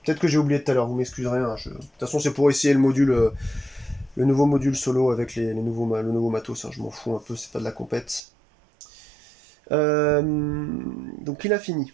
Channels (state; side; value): drops out; left; at 8.2 s